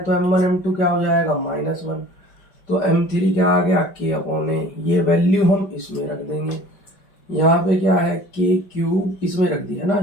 तो m1 m2 क्या हो जाएगा -1, तो m3 क्या आ गया k/a, ये वैल्यू हम इसमें रख देंगे। यहाँ पे क्या है k³ इसमें रख दिया ना,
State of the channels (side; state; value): right; late; 5.2 ms